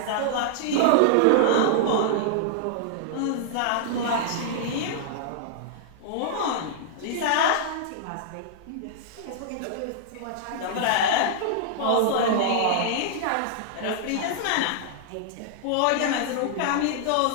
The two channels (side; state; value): both; different; correlation -0.01